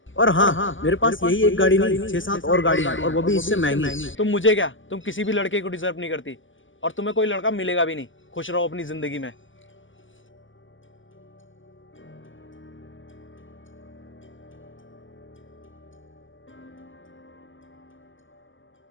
और हाँ, मेरे पास यही एक गाड़ी नहीं, 6-7 और गाड़ी है, और वो भी इससे महंगी। तुम मुझे क्या, तुम किसी भी लड़के को डिजर्व नहीं करती, और तुम्हें कोई लड़का मिलेगा भी नहीं। खुश रहो अपनी जिंदगी में।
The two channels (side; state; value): right; late; 0.56 ms